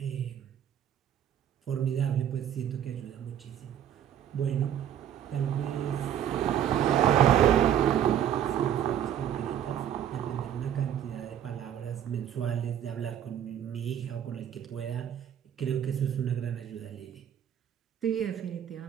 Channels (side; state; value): left; quieter; 10.0 dB